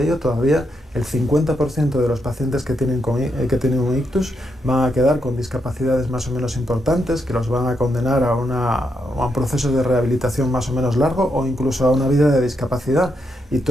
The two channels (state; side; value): normal; both; correlation 0.81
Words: ello todavía el 50% de los pacientes que tienen un ictus van a quedar con discapacidades más o menos importantes, que los van a condenar a un proceso de rehabilitación más o menos largo o incluso a una vida de discapacidad. Y